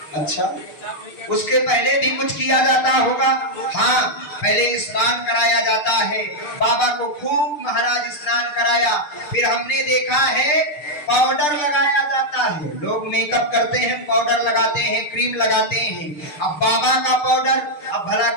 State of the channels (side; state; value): right; late; 6.6 ms